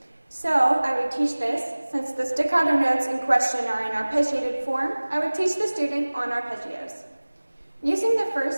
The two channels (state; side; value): inverted; both; correlation -1.00